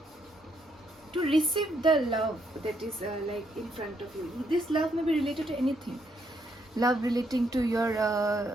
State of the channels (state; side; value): normal; both; correlation 0.74